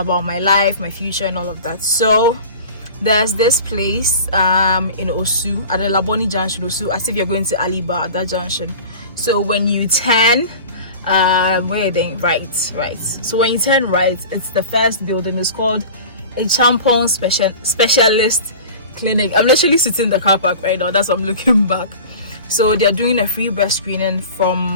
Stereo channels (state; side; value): inverted; both; correlation -0.37